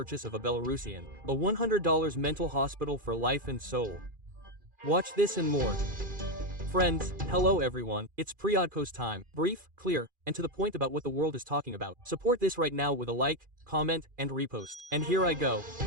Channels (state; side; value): late; left; 2.4 ms